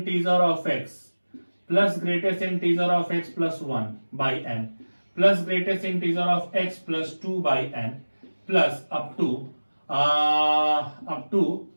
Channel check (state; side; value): inverted; both; correlation -1.00